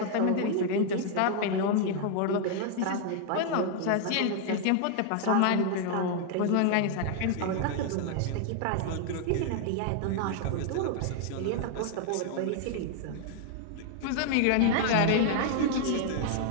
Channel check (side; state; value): both; different; correlation 0.00